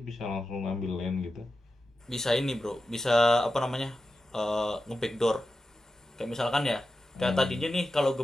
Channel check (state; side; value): normal; both; correlation 0.91